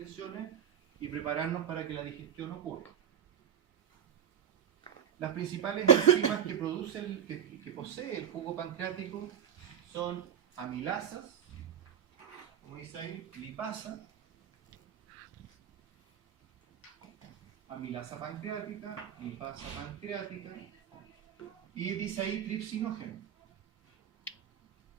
y prepararnos para que la digestión ocurra. Las principales enzimas que posee el jugo pancreático son amilasas, como dice ahí, lipasa, amilasa pancreática, lipasa pancreática y dice ahí tripsinógeno.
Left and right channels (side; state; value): left; quieter; 8.7 dB